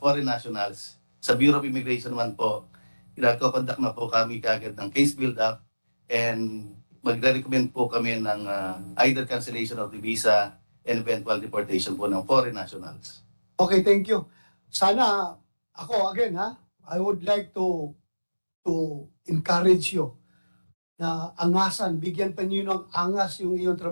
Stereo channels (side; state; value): both; inverted; correlation -1.00